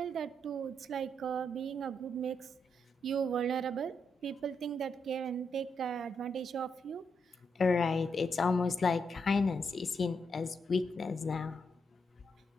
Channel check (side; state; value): both; normal; correlation 0.80